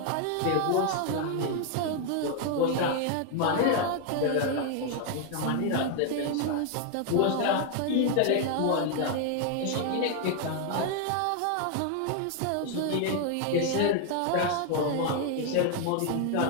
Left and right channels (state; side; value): different; both; correlation 0.00